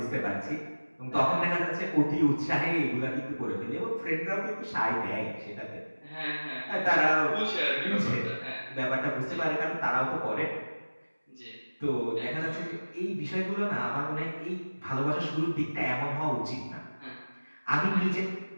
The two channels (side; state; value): both; inverted; correlation -1.00